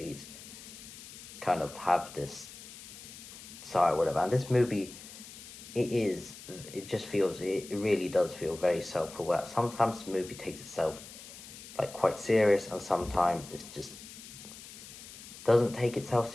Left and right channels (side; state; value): left; noise; hiss, 15 dB below the sound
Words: kind of have this side, whatever. And this movie, it just feels, it really does feel very self-aware. Sometimes the movie takes itself like quite serious, and sometimes it just doesn't take itself